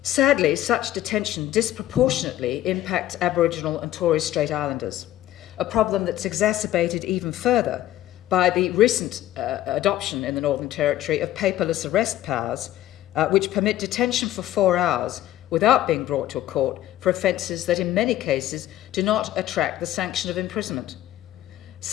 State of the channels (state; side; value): quieter; right; 13.6 dB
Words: Sadly, such detention disproportionately impacts Aboriginal and Torres Strait Islanders, a problem that's exacerbated even further by the recent adoption in the Northern Territory of paperless arrest powers, which permit detention for 4 hours without being brought to a court for offences that in many cases do not attract the sanction of imprisonment.